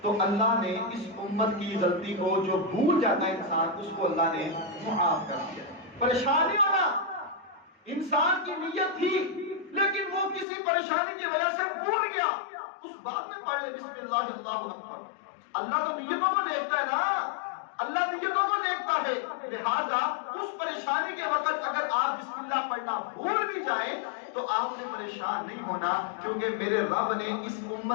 تو اللہ نے اس امت کی غلطی کو، جو بھول جاتا ہے انسان، اس کو اللہ نے معاف کر دیا۔ پریشانی ہونا، انسان کی نیت تھی لیکن وہ کسی پریشانی کی وجہ سے بھول گیا، اس بات میں پڑھ لے بسم اللہ اللہ اکبر۔ اللہ تو نیتوں کو دیکھتا ہے نا، اللہ نیتوں کو دیکھتا ہے، لہذا اس پریشانی کے وقت اگر آپ بسم اللہ پڑھنا بھول بھی جائیں تو آپ نے پریشان نہیں ہونا، کیونکہ میرے رب نے اس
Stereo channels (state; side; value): drops out; right; at 10.5 s